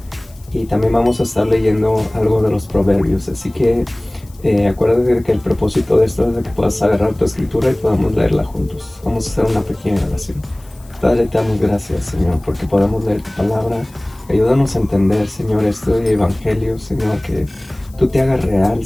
Y también vamos a estar leyendo algo de los proverbios. Así que acuérdate de que el propósito de esto es de que puedas agarrar tu escritura y podamos leerla juntos. Vamos a hacer una pequeña oración. Padre, te damos gracias, Señor, porque podemos leer tu palabra. Ayúdanos a entender, Señor, este evangelio, Señor, que tú te hagas real,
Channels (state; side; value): noise; left; hiss, 27 dB below the sound